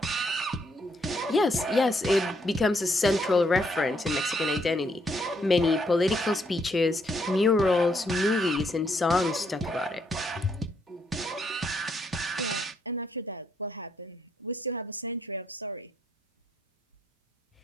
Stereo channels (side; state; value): both; normal; correlation 0.74